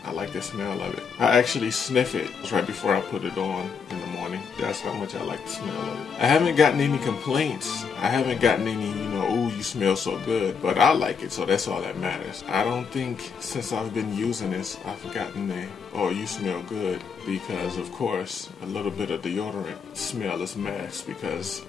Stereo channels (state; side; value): quieter; right; 6.0 dB